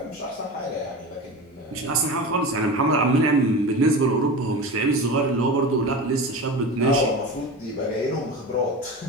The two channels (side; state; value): both; normal; correlation 0.29